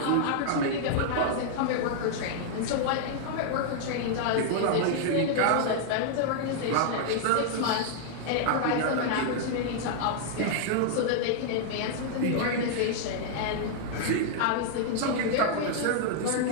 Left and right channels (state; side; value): different; both; correlation -0.01